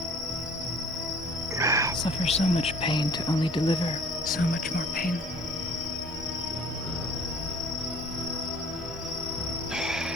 Suffer so much pain to only deliver so much more pain.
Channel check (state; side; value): normal; both; correlation 0.51